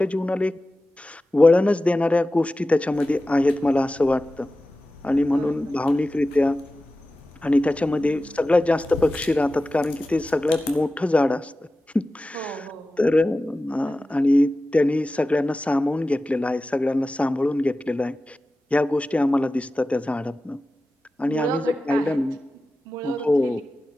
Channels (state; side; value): normal; both; correlation 0.95